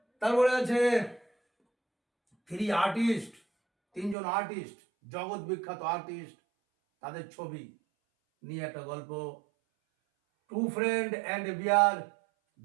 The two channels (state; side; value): drops out; left; at 4.2 s